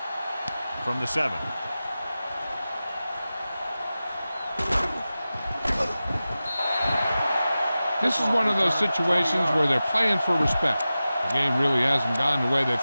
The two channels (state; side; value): inverted; both; correlation -0.95